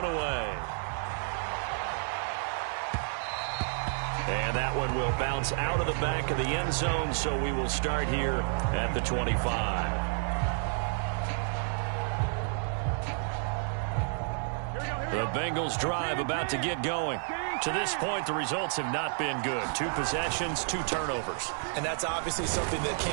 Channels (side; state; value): left; silent; 57 dB below the other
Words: away. And that one will bounce out of the back of the end zone, so we will start here at the 25. The Bengals drive about to get going. To this point, the results have not been good. 2 possessions, 2 turnovers. And that's obviously something that